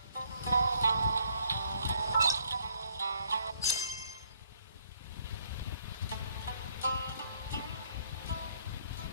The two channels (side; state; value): both; inverted; correlation -0.67